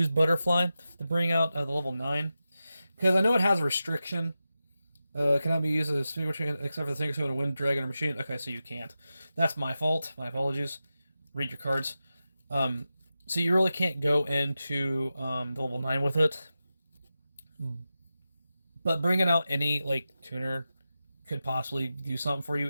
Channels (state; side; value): inverted; both; correlation -0.91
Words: Butterfly to bring out the level 9. Because I know it has a restriction. Cannot be used as a single except for the single summon, wind dragon, or machine. Okay, so you can't. That's my fault. My apologies. Read your cards. So you really can't go into the level 9 with it. But bringing out any like tuner could possibly do something for you